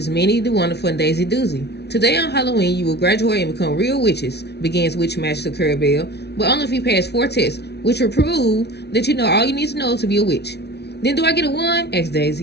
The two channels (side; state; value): right; late; 0.49 ms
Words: Minnie the Wonderful and Daisy Doozy. Today on Halloween, you will graduate and become real witches, begins Witchmaster Clarabelle, but only if you pass 4 tests, which will prove that you know all you need to know to be a witch. Then do I get a 1? Asks